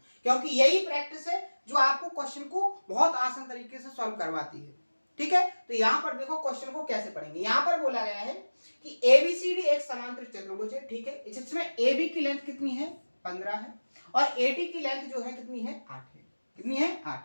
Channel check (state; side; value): inverted; both; correlation -1.00